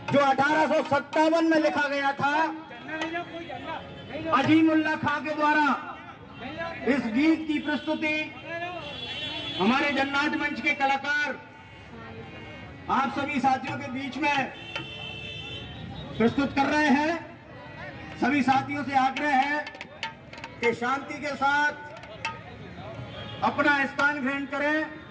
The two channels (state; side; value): identical; both; correlation 1.00